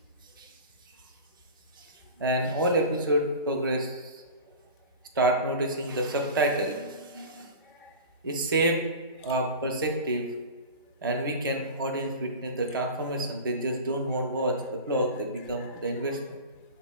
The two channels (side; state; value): both; inverted; correlation -0.33